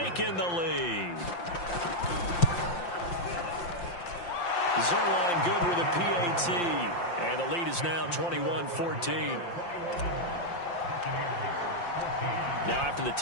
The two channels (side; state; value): right; late; 5.7 ms